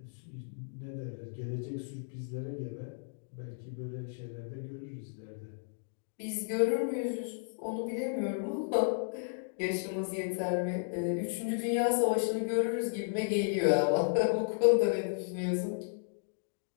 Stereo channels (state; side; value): silent; right; digital silence